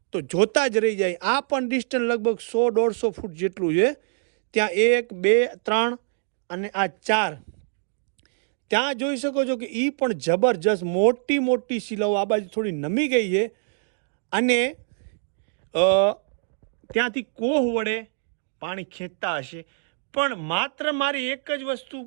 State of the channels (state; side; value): silent; left; digital silence